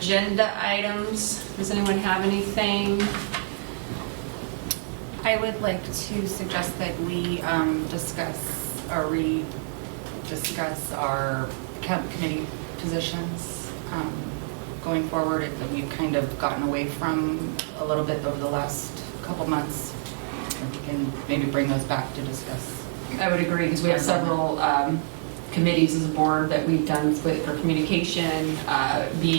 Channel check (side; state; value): left; silent; 55 dB below the other